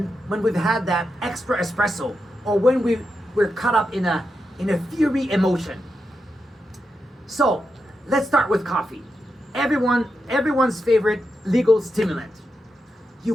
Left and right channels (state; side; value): normal; both; correlation 0.86